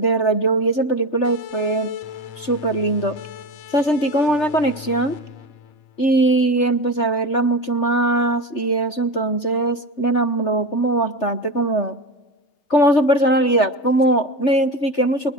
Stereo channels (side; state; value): right; late; 3.3 ms